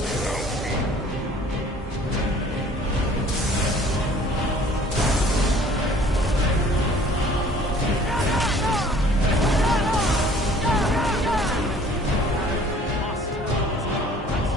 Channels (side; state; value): both; normal; correlation 0.53